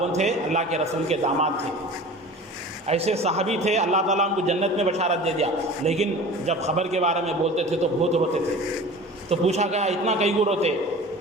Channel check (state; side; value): normal; both; correlation 0.39